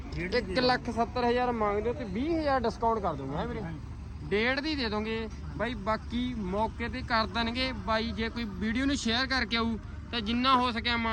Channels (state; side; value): identical; both; correlation 1.00